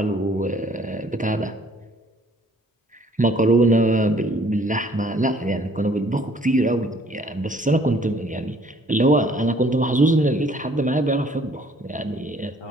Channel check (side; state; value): both; normal; correlation 0.59